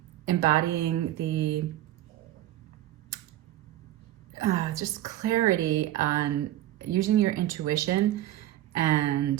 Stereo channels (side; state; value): left; quieter; 14.1 dB